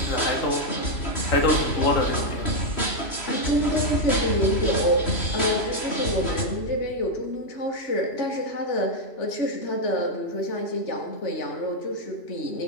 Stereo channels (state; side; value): late; right; 3.0 ms